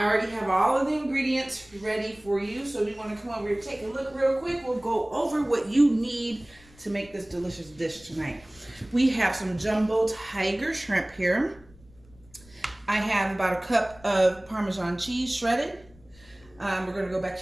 already have all of the ingredients ready for you. So we want to come over here, take a look real quick. We'll go over what you need to make this delicious dish tonight. We have some jumbo tiger shrimp here. I have about a cup of Parmesan cheese shredded. We're going to go back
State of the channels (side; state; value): left; noise; rumble, 26 dB below the sound